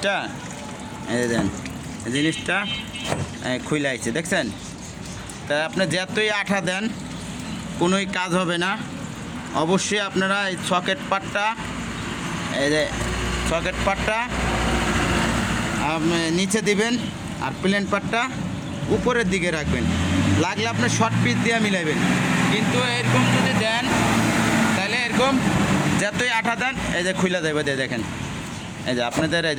এই যে দেন জিনিসটা খুলে আইছে, দেখছেন? তা আপনি যতই আঠা দেন কোনোই কাজ হবে না। অবশ্যই আপনারা এই সকেট পার্টটা, এই যে সকেট পার্টটা নিচে দিবেন আর প্লেন পার্টটা উপরের দিকে রাখবেন। লাগলে আপনি শর্ট পিস দিয়ে মিলাইবেন, কিন্তু এরকম যদি দেন তাহলে এরকম যতই আঠা দেন এই যে খুইলা দেবে, দিয়ে দেখেন এই যে আপনাদের এই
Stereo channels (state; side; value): identical; both; correlation 1.00